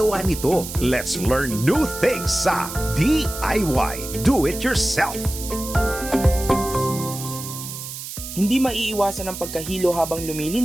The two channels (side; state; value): right; noise; hiss, 9 dB below the sound